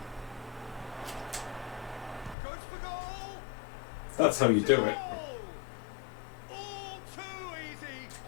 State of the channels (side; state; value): right; drops out; at 2.4 s